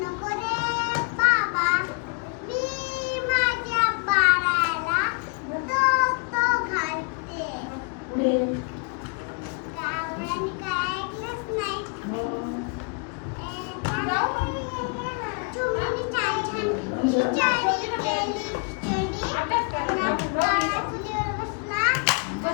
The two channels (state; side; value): quieter; right; 36.5 dB